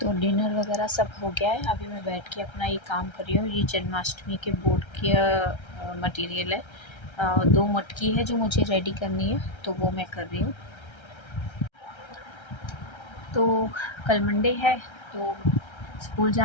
तो डिनर वगैरह सब हो गया है। अभी मैं बैठ के अपना ये काम कर रही हूँ। ये जन्माष्टमी के बोर्ड की मटेरियल है, 2 मटकी है जो मुझे रेडी करनी है, तो वो मैं कर रही हूँ। तो कल मंडे है, तो स्कूल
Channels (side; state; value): right; late; 1.3 ms